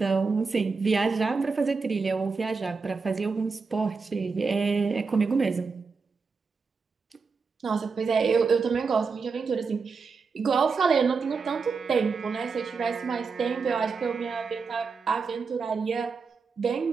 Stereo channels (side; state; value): left; quieter; 4.9 dB